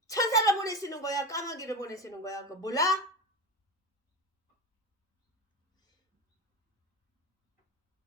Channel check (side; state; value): both; normal; correlation 0.24